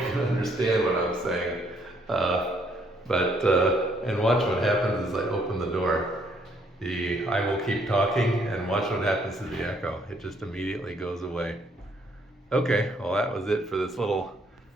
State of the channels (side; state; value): both; normal; correlation 0.68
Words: understand what I'm saying. And watch what happens as I open the door. I will keep talking and watch what happens to the echo. It just immediately goes away. Okay, well that was it for this little